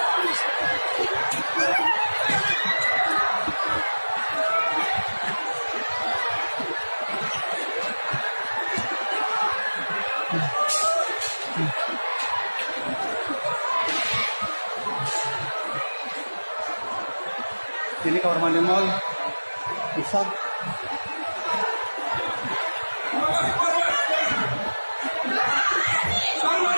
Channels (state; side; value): inverted; both; correlation -1.00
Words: Ini kamar mandi mall Pusat.